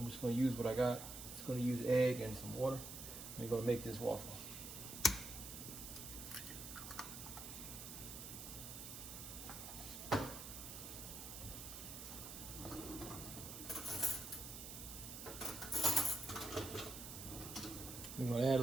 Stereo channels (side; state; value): right; noise; hiss, 9 dB below the sound